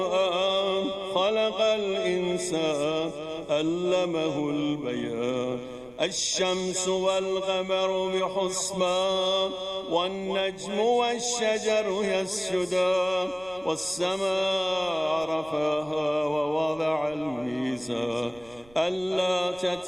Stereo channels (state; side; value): noise; right; rumble, 26 dB below the sound